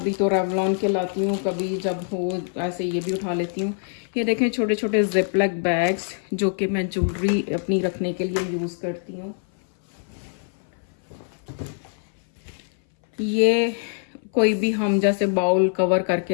तो रेवलॉन के लाती हूँ, कभी जब हो ऐसे ये भी उठा लेती हूँ। ये देखें छोटे छोटे जिपलॉक बैग्स जो कि मैं ज्वेलरी अपनी रखने के लिए यूज़ करती हूँ। ये कोई भी हम जैसे बाउल कवर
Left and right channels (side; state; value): right; silent; 59 dB below the other